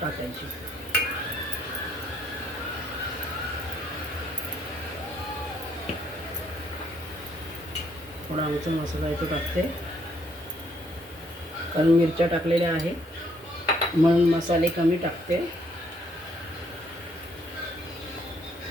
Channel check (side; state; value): both; normal; correlation 0.69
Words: टाकायची. थोडा आमचा मसाला इथे टाकते, कारण मिरच्या टाकलेल्या आहे म्हणून मसाले कमी टाकते.